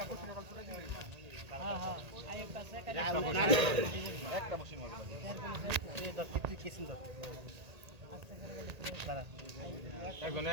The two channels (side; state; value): left; late; 1.8 ms